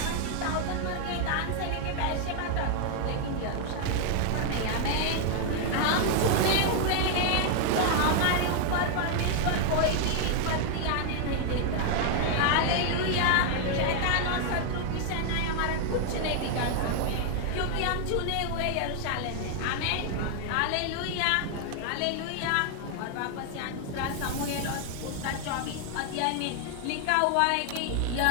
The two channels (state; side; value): different; both; correlation 0.00